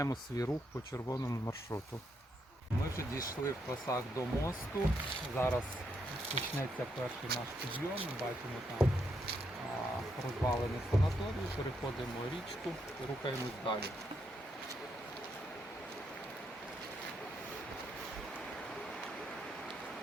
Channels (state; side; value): normal; both; correlation 0.79